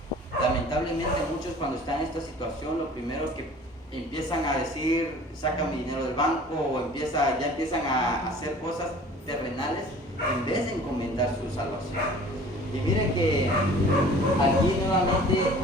Lamentablemente muchos, cuando están en esta situación, lo primero que empiezan a decir: saca mi dinero del banco, o ya empiezan a hacer cosas terrenales en vez de encomendar su salvación. Y mire que aquí nuevamente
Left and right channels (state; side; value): normal; both; correlation 0.47